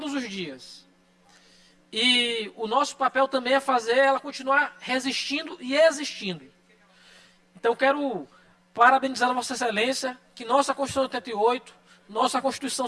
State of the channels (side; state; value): both; identical; correlation 1.00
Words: os dias. E o nosso papel também é fazer ela continuar resistindo e existindo. Então, quero parabenizar a Vossa Excelência, que nossa Constituição de 88, nossa